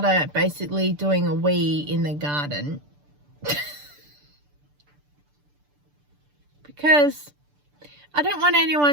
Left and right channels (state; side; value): late; left; 6.8 ms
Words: basically doing a wee in the garden. Because I don't want